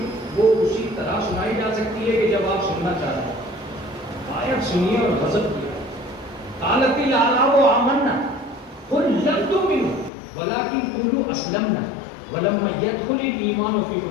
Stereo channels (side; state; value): right; drops out; at 10.1 s